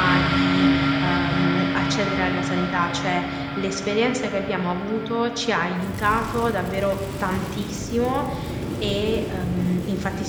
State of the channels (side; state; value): both; identical; correlation 1.00